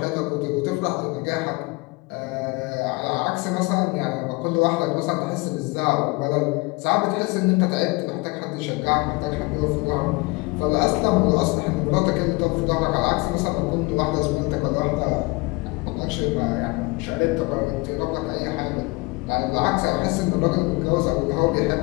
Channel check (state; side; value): quieter; right; 25.6 dB